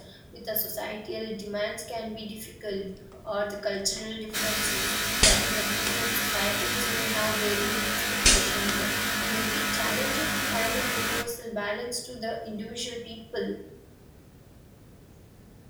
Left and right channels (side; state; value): both; identical; correlation 1.00